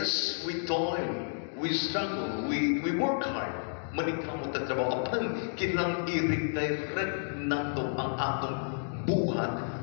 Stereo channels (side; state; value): right; silent; digital silence